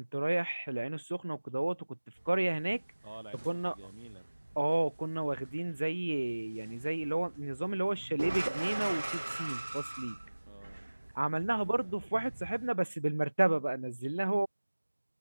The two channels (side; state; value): both; inverted; correlation -1.00